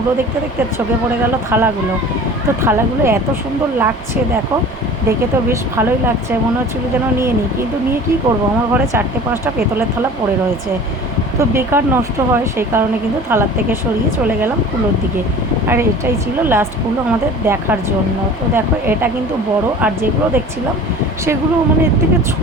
দেখতে দেখতে চোখে পড়ে গেল থালাগুলো। তো থালাগুলো এত সুন্দর লাগছে, দেখো দেখে তো বেশ ভালোই লাগছে, মনে হচ্ছিলো যেন নিয়ে নিই, কিন্তু নিয়ে কী করবো, আমার ঘরে 4-5টা পেতলের থালা পড়ে রয়েছে। তো বেকার নষ্ট হয়, সেই কারণে কিন্তু থালার থেকে সরিয়ে চলে গেলাম কুলোর দিকে। আর এটাই ছিল লাস্ট কুলো আমাদের দেখার জন্য। তো দেখো এটা কিন্তু বড়, আর যেগুলো দেখছিলাম সেগুলো মানে এর থেকে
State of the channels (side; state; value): both; normal; correlation 0.42